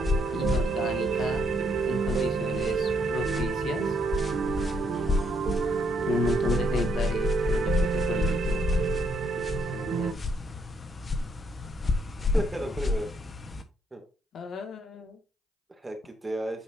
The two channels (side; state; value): both; normal; correlation 0.73